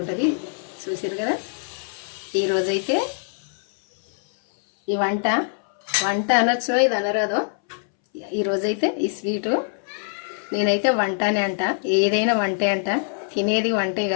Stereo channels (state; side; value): silent; right; 62 dB below the other